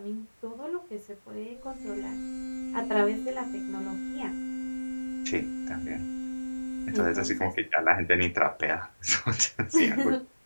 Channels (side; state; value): both; inverted; correlation -1.00